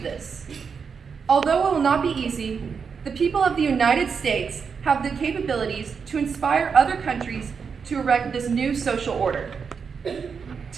this? Although it will not be easy, the people of the United States have the capabilities to inspire other countries to erect this new social order.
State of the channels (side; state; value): left; quieter; 6.0 dB